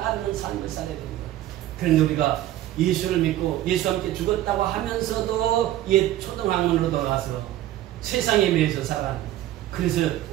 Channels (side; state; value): left; quieter; 13.9 dB